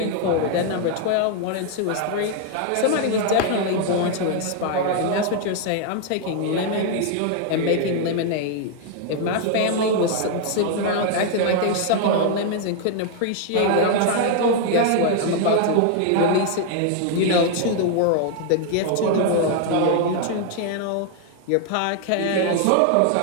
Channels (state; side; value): different; both; correlation 0.00